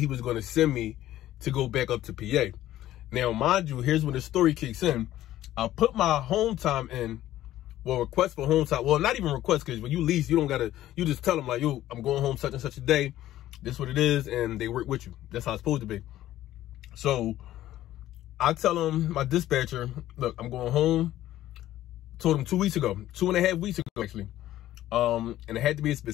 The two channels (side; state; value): right; quieter; 13.8 dB